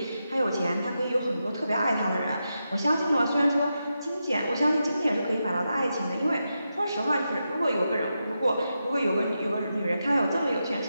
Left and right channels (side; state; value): both; inverted; correlation -0.87